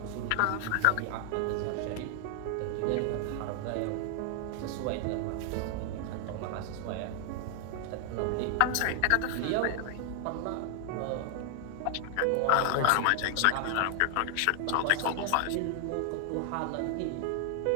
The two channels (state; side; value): different; both; correlation 0.00